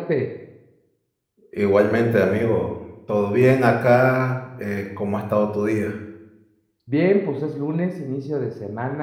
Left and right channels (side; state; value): both; identical; correlation 1.00